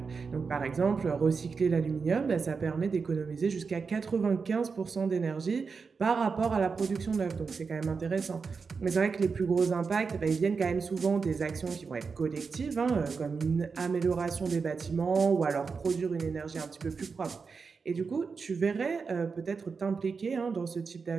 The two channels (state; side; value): quieter; left; 5.1 dB